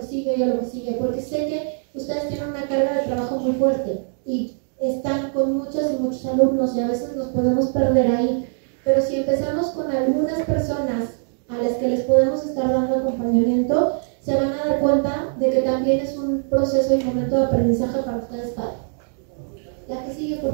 sigue y a lo que sigue, porque sé que ustedes tienen una carga de trabajo muy fuerte y están con muchas y muchos alumnos y a veces nos podemos perder ahí. Pero si empezamos con algunas personas a las que les podemos estar dando acompañamiento, se van a dar cuenta de que también es un proceso y momento de aprendizaje para ustedes padres. La que sigue,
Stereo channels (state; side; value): silent; left; 58 dB below the other